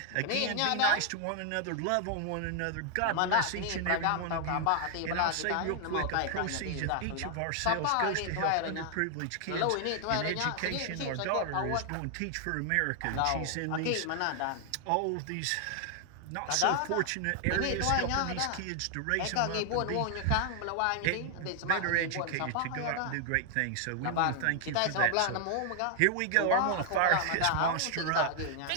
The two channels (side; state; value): both; different; correlation 0.00